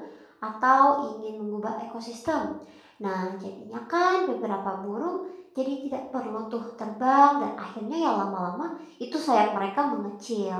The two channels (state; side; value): identical; both; correlation 1.00